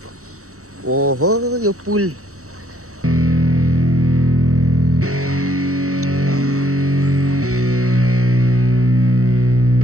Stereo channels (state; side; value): late; left; 0.64 ms